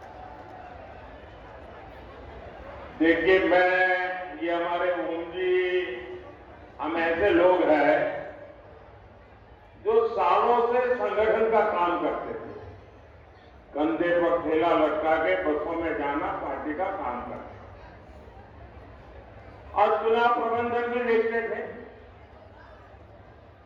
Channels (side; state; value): both; identical; correlation 1.00